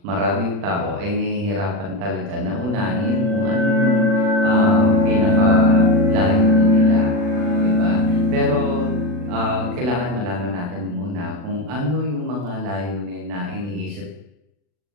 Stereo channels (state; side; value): late; left; 40 ms